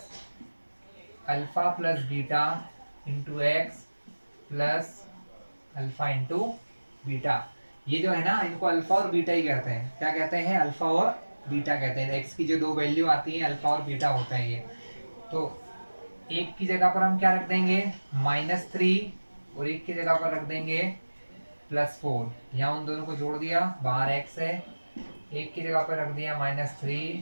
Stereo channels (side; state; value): both; inverted; correlation -1.00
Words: alpha plus beta into x plus alpha into beta. ये जो है ना, इनको अल्फा और बीटा ही कहते हैं। क्या कहते हैं, अल्फा और बीटा कहते हैं। एक्स की जो दो वैल्यू आती है अल्फा और बीटा होता है ये। तो एक की जगह पर हम क्या रख देंगे, -3, और एक की जगह पर रख देंगे +4। यहाँ उन दोनों को जोड़ दिया, बाहर एक्स है, एक की जगह पर रख दिया